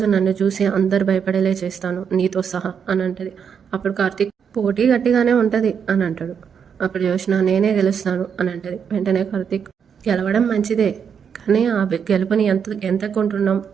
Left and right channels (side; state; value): left; quieter; 7.2 dB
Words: నన్ను చూసి అందరు భయపడేలే చేస్తాను నీతో సహా అని అంటది. అప్పుడు కార్తీక్ పోటీ గట్టిగానే ఉంటుంది అని అంటాడు. అప్పుడు జోష్న నేనే గెలుస్తాను అని అంటది. వెంటనే కార్తీక్ గెలవడం మంచిదే, కానీ ఆ గెలుపుని ఎంత కొంటున్నాం